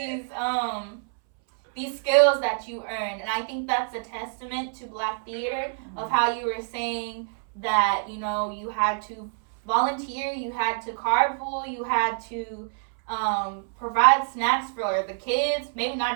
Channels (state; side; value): silent; left; 61 dB below the other